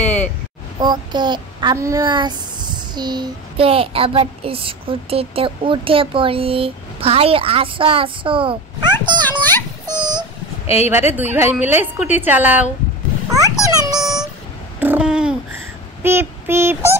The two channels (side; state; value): both; normal; correlation 0.30